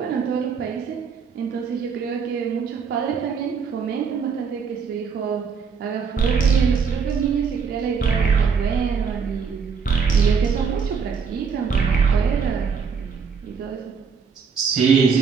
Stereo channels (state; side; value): quieter; left; 5.9 dB